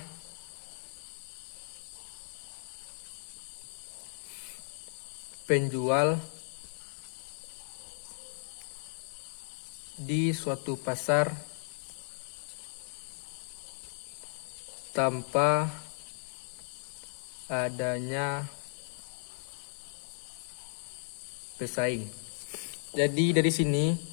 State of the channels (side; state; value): right; silent; 54 dB below the other